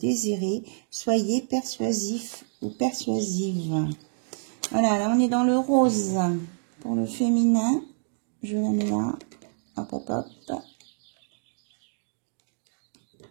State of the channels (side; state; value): left; silent; 60 dB below the other